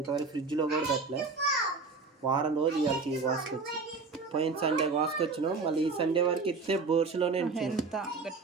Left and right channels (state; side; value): quieter; left; 4.3 dB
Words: ఫ్రిడ్జ్లో కూడా పెట్టలే. వారం రోజు ఇవాళకి కోసుకొచ్చి, పోయిన సండే కోసుకొచ్చినాం. మళ్ళీ ఈ సండే వరకు ఇస్తే బోర్సులోనే ఎంత